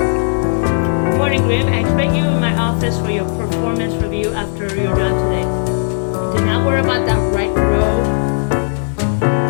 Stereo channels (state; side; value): silent; right; digital silence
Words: Good morning, Grim. I expect you in my office for your performance review after you're done today. Do not worry about that right row.